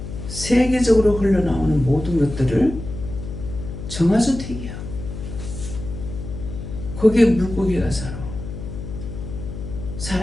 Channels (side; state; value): left; noise; hum, 8 dB below the sound